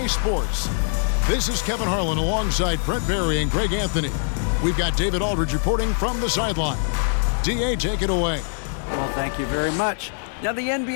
Sports. This is Kevin Harlan alongside Brent Barry and Greg Anthony. We've got David Aldridge reporting from the sideline. DA, take it away. Well, thank you very much. Now, the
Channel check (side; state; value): right; silent; digital silence